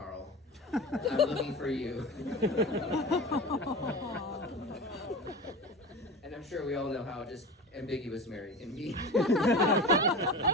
I'm looking for you." And I'm sure we all know how just ambiguous Mary can be.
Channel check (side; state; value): both; normal; correlation 0.30